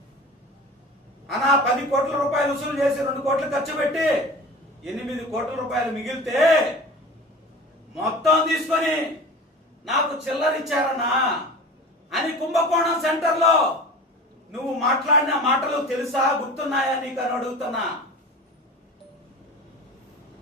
10 కోట్ల రూపాయలు వసూలు చేసి 2 కోట్లు ఖర్చు పెట్టి 8 కోట్ల రూపాయలు మిగిలితే మొత్తం తీసుకొని నాకు చిల్లరిచ్చారన్నా అని కుంభకోణం సెంటర్ లో నువ్వు మాట్లాడిన మాటలు తెలుసా, గుర్తున్నాయా నీకు అని అడుగుతున్నా.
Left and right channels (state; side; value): normal; both; correlation 0.37